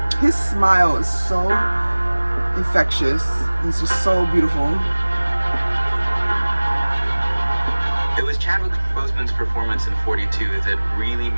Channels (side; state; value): both; inverted; correlation -1.00